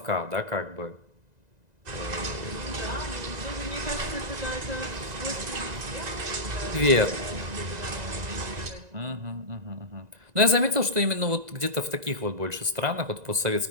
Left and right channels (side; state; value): left; late; 2.0 ms